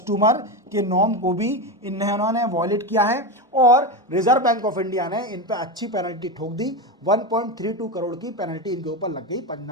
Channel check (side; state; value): both; normal; correlation 0.16